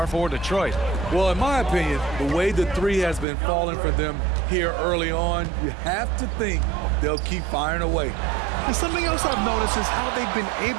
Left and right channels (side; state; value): left; drops out; at 3.2 s